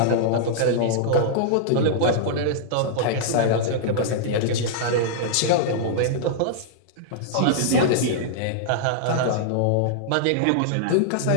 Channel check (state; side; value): different; both; correlation -0.02